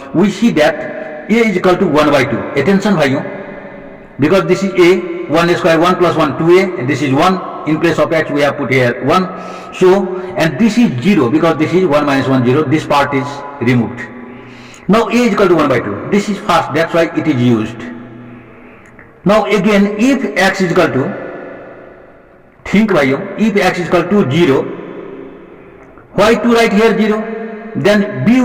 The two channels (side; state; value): both; identical; correlation 1.00